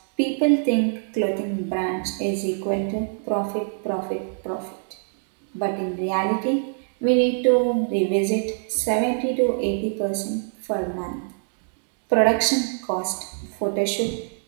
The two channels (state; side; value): silent; left; digital silence